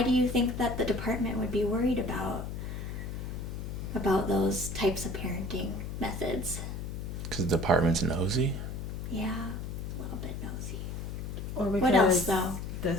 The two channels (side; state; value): left; noise; hum, 6 dB below the sound